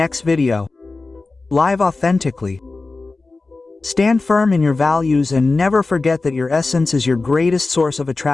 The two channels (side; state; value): right; quieter; 3.6 dB